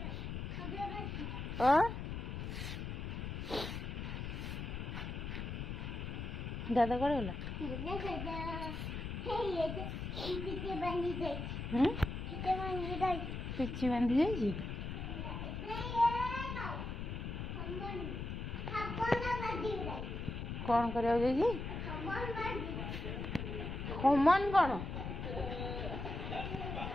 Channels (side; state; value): left; noise; rumble, 5 dB below the sound